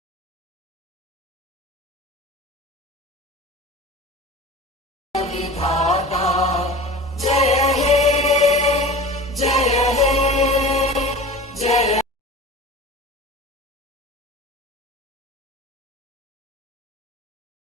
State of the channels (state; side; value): normal; both; correlation 0.36